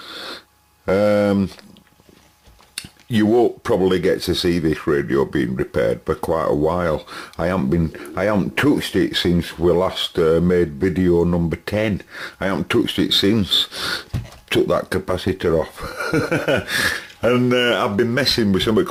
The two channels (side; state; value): both; identical; correlation 1.00